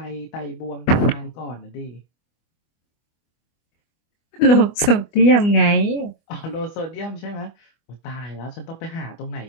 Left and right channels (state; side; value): late; right; 24 ms